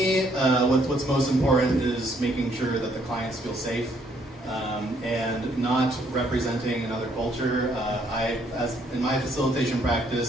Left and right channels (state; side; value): normal; both; correlation 0.68